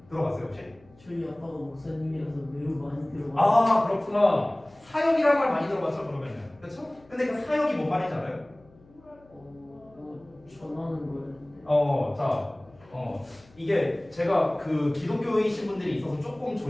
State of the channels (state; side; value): noise; left; hum, 28 dB below the sound